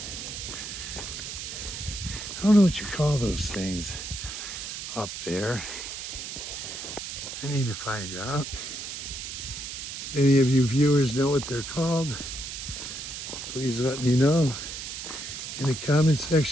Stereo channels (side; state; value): right; noise; hiss, 7 dB below the sound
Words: I don't know what you call those things up there. I need to find out. Any of you viewers know what they're called? Please let me know in the comment